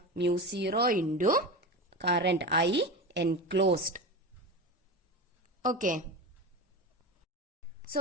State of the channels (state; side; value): normal; both; correlation 0.25